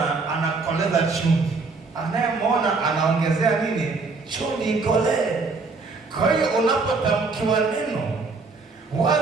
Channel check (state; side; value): quieter; left; 4.1 dB